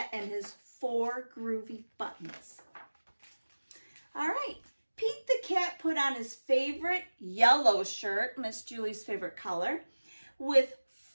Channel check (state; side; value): inverted; both; correlation -1.00